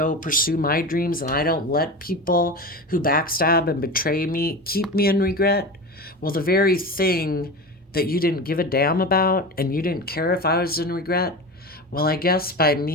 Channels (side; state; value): both; normal; correlation 0.27